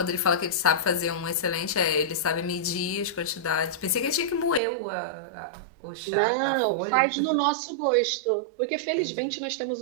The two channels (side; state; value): left; drops out; at 4.6 s